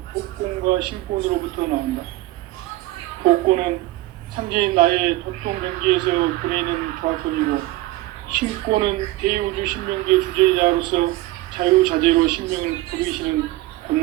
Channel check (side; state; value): left; quieter; 18.2 dB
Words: 복권과 신권으로부터 나온다. 복권은 상제인 나의 도통 경계에서 보내는 조합선이고, 신권은 대우주 신명계 주제자로서 자유자재로 신명을 부르시는